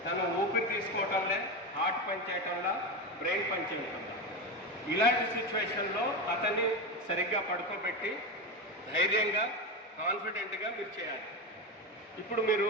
తను ఊపిరి తీసుకోవటంలే, హార్ట్ పని చేయటంలో, బ్రెయిన్ పని చేయటంలో. ఇలాంటి సిచ్యువేషన్లో అతన్ని సరిగ్గా పడుకోబెట్టి ధైర్యంగా కాన్ఫిడెంట్గా మీరు చేయాలి. ఇప్పుడు మీరు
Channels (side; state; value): both; normal; correlation 0.17